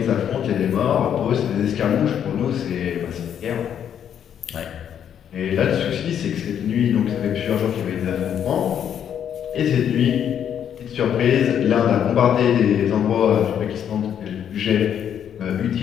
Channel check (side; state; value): right; quieter; 9.1 dB